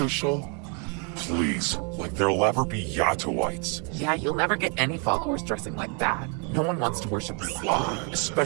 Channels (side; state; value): left; quieter; 35.5 dB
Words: Please, like there'll ever be Yatoites. Yeah, you'll never get any followers dressing like that. No one wants to worship the slaw.